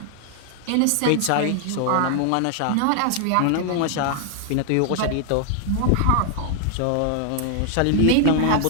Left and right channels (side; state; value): both; different; correlation 0.00